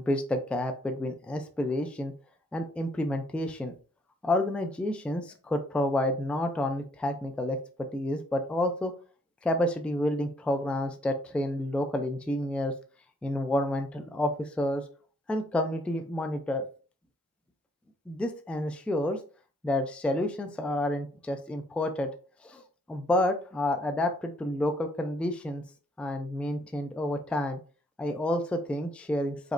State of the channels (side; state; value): both; normal; correlation 0.68